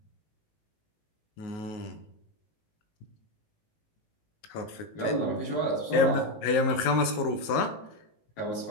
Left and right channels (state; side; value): late; right; 19 ms